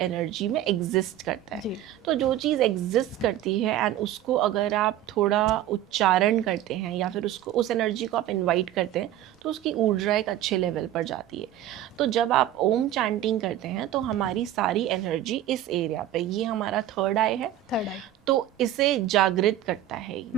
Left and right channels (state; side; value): quieter; left; 12.3 dB